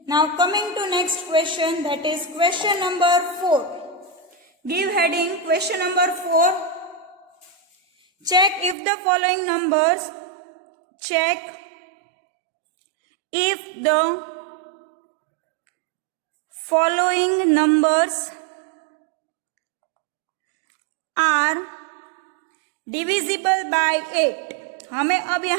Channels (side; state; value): left; drops out; at 8.8 s